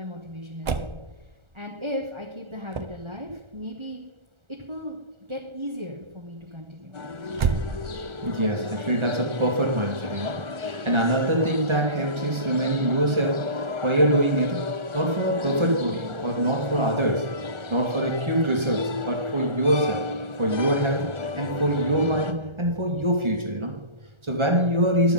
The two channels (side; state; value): left; late; 1.4 ms